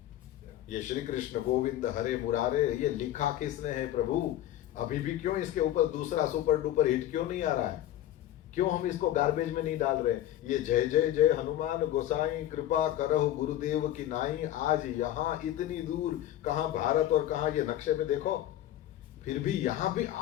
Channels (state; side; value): quieter; right; 12.9 dB